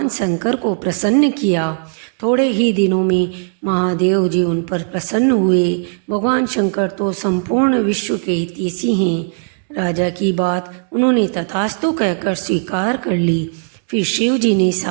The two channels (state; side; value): silent; left; digital silence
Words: शंकर को प्रसन्न किया। थोड़े ही दिनों में महादेव जी उन पर प्रसन्न हुए। भगवान शंकर तो संपूर्ण विश्व के हितैषी हैं। राजा की बात उन्होंने तथास्तु कहकर स्वीकार कर ली। फिर शिव जी ने